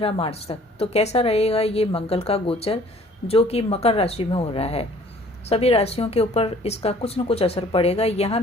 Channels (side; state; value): both; normal; correlation 0.54